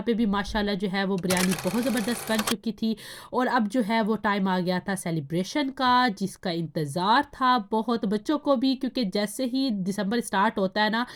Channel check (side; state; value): both; identical; correlation 1.00